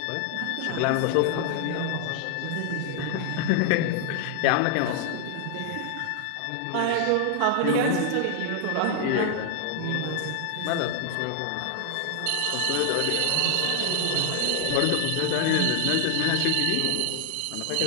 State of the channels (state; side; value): different; both; correlation 0.00